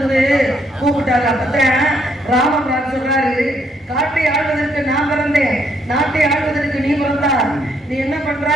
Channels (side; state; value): both; normal; correlation 0.71